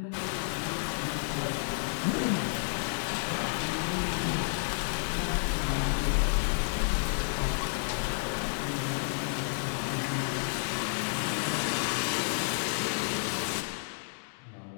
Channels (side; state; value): right; silent; digital silence